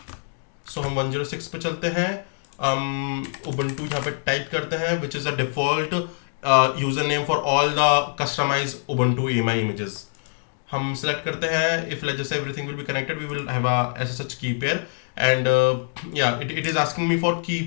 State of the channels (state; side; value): silent; right; 62 dB below the other